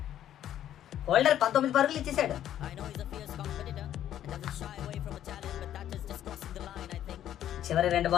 హోల్డర్ 19 పరుగులు ఇచ్చేసాడు. చివరి 2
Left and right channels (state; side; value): quieter; right; 11.3 dB